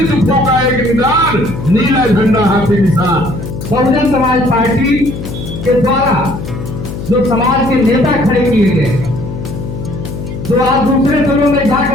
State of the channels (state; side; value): noise; left; hum, 8 dB below the sound